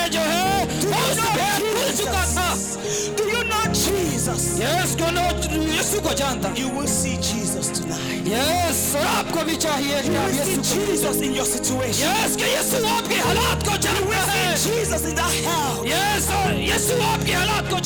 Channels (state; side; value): identical; both; correlation 1.00